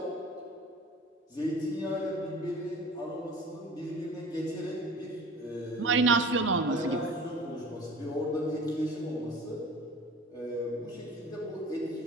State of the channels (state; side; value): normal; both; correlation 0.41